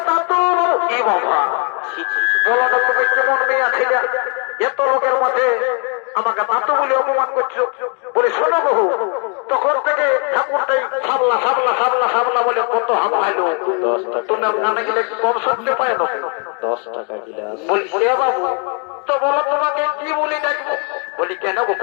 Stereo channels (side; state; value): right; quieter; 37.4 dB